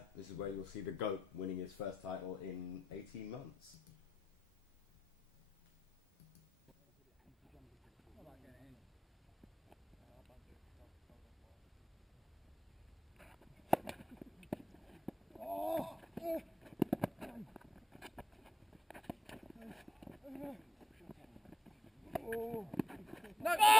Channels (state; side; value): normal; both; correlation 0.90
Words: this is where you'll see the GOAT winning his first title in 18 months.